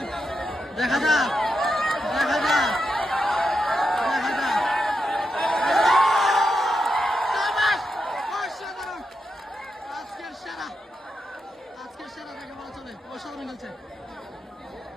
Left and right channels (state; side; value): normal; both; correlation 0.86